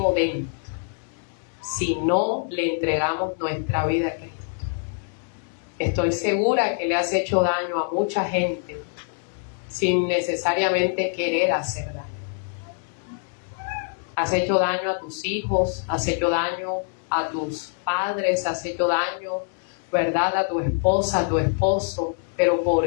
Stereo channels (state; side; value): silent; right; 62 dB below the other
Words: dentro si no le entregamos nuestra vida a Cristo. Estoy segura que le has hecho daño a mucha gente sin necesariamente querer hacer daño. Has hecho daño a tus hijos, has hecho daño a tus padres, has hecho daño, ¿verdad?, a tu esposa, a tu esposo. Pero